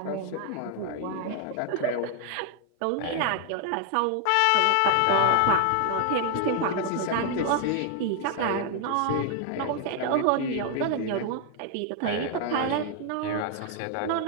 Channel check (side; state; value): both; different; correlation 0.00